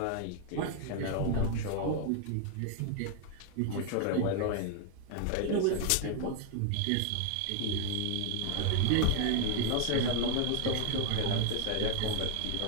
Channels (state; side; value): different; both; correlation 0.00